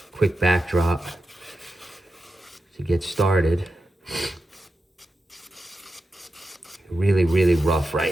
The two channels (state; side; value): normal; both; correlation 0.90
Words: quick backdrop to get started. Really rough right